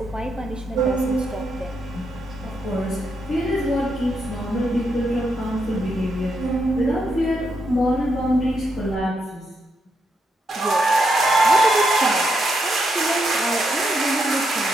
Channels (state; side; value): normal; both; correlation 0.80